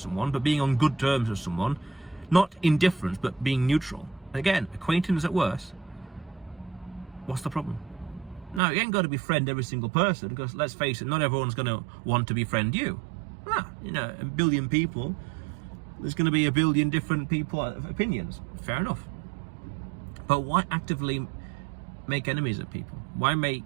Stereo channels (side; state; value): left; drops out; at 8.6 s